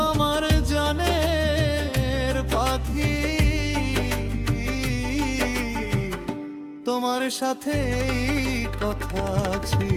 আমার জানের পাখি। তোমার সাথে এই কথা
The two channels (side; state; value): both; identical; correlation 1.00